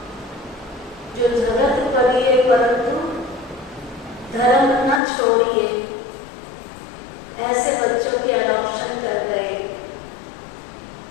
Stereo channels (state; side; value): drops out; right; at 5.0 s